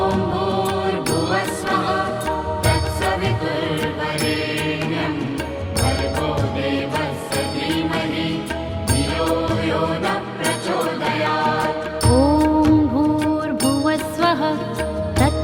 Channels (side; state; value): both; identical; correlation 1.00